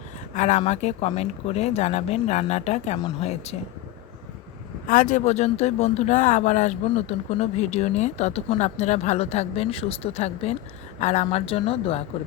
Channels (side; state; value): right; quieter; 14.9 dB